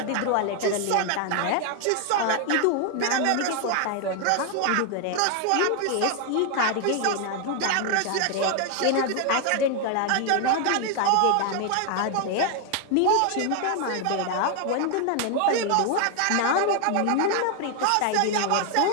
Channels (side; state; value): both; different; correlation 0.00